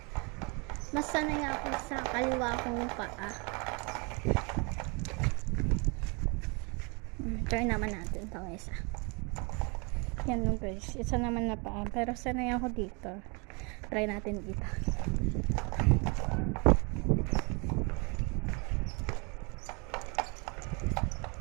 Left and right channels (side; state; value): left; quieter; 31.9 dB